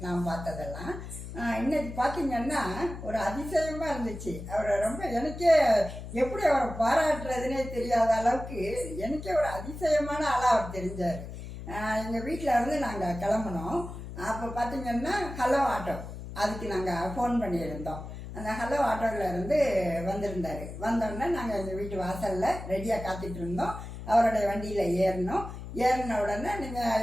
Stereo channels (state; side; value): noise; left; hum, 10 dB below the sound